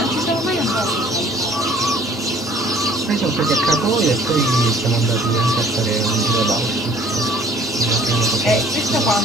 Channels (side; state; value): both; normal; correlation 0.55